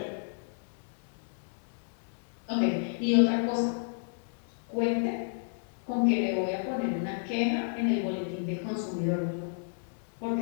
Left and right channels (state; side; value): silent; right; digital silence